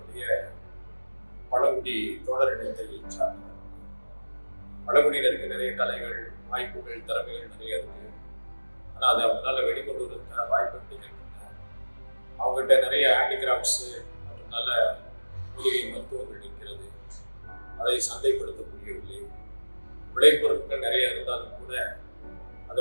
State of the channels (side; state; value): both; inverted; correlation -1.00